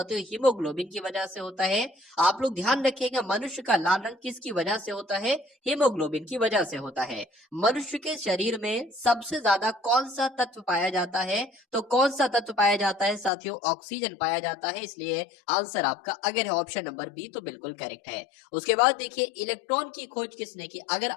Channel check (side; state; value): right; drops out; at 13.3 s